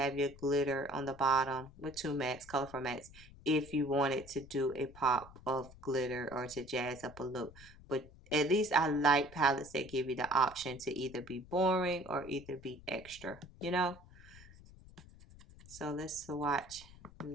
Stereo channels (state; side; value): noise; left; rumble, 20 dB below the sound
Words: your glitter on the bottom with 2 mattes, colorful mattes, if you wanted to do a pop of glitter or to jazz up a look. But at least I like palettes that give you the option to either be boring or either be extra, So let's swatch